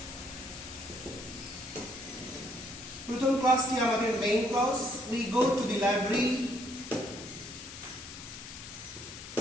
প্রথম ক্লাসটি আমাদের main class, we go to the library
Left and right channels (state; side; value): noise; left; hiss, 12 dB below the sound